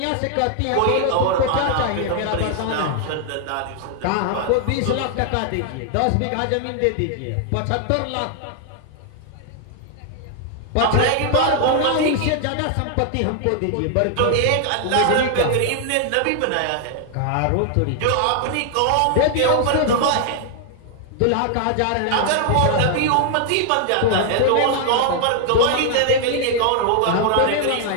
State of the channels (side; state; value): both; different; correlation 0.00